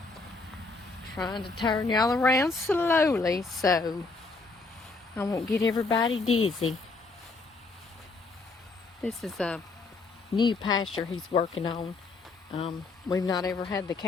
Trying to turn y'all around slowly so I won't get everybody dizzy. This is a new pasture he's working on. We've not ever had the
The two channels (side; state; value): right; quieter; 3.8 dB